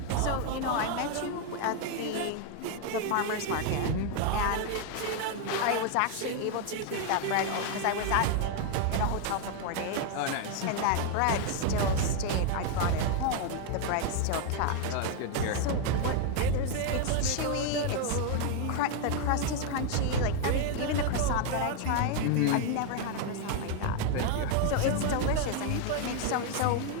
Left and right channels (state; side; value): different; both; correlation 0.00